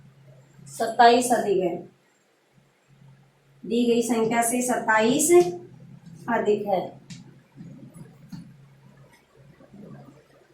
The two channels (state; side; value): identical; both; correlation 1.00